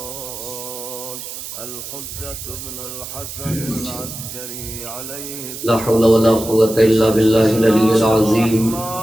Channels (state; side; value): noise; right; hiss, 10 dB below the sound